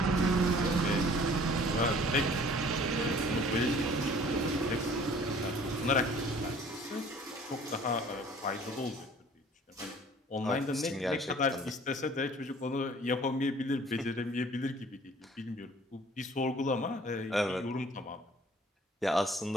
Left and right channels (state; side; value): normal; both; correlation 0.52